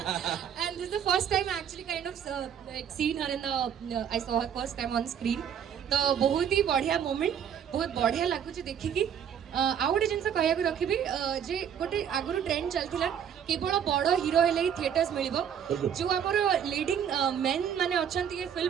and this the first time actually kind of scene her in the I saw her first time on screen तो बहुत ही बढ़िया moment बहुत बढ़िया लगुच देखिकी आउ गोटे जिन कह रखी जे गोटे आगुरी ट्रेंड चलता केवल बड़ हीरो हेले ही थिएटर्स मिल जो आमर लीडिंग मेन माने अच्छा ये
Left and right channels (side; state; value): left; quieter; 8.6 dB